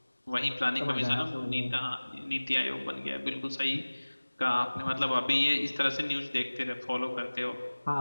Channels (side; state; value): both; inverted; correlation -1.00